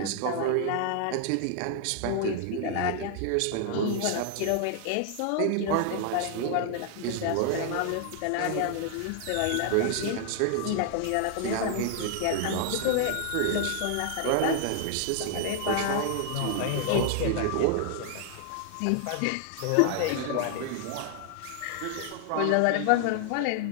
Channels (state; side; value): different; both; correlation 0.00